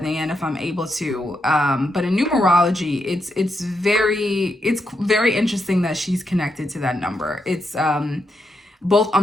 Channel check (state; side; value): normal; both; correlation 0.83